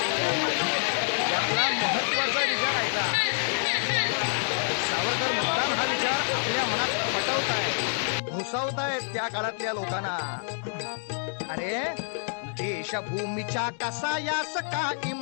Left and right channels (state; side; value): silent; right; digital silence